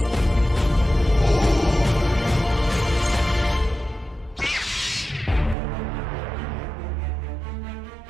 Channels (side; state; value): left; drops out; at 5.6 s